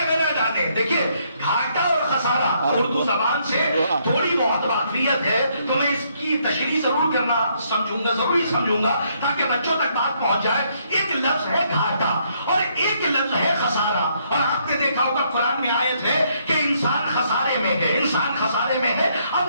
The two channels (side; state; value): both; inverted; correlation -0.71